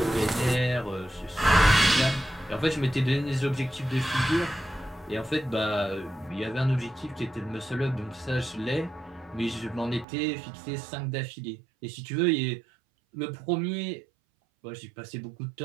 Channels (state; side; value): drops out; left; at 10.1 s